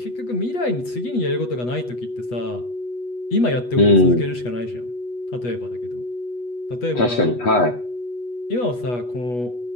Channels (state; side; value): late; right; 8.2 ms